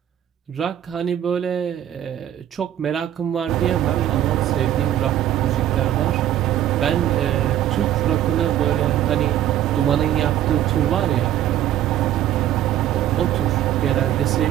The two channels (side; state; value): left; quieter; 11.8 dB